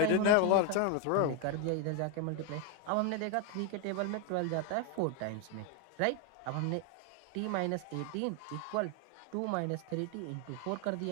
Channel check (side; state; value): both; different; correlation 0.01